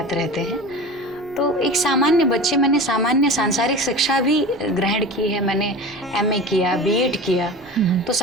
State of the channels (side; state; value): both; normal; correlation 0.33